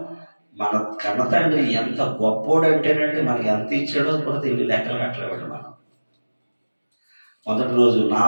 కన్న తండ్రి ఎంత గొప్పోడంటేనండి మనకి ఎంత ఇచ్చాడో కూడా తెలియ లెక్కలు కట్టలేవాడు. మనం మొదటి రోజు నా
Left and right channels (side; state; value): both; inverted; correlation -1.00